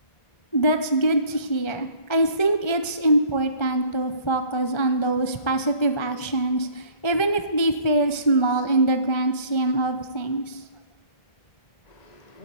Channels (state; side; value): late; right; 1.3 ms